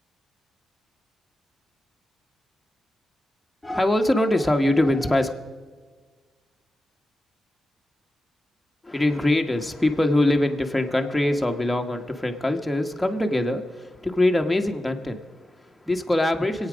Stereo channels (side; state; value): both; normal; correlation 0.92